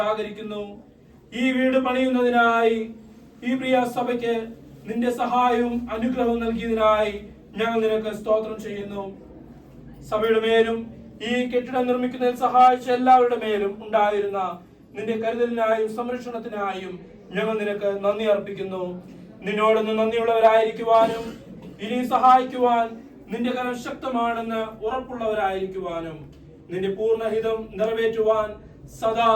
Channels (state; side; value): identical; both; correlation 1.00